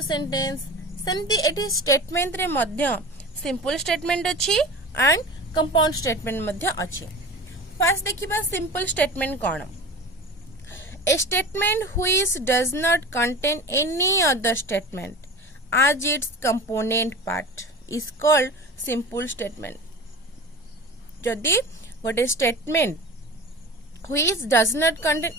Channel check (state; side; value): normal; both; correlation 0.34